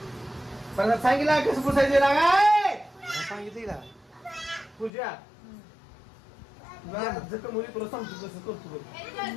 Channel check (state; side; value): drops out; right; at 4.9 s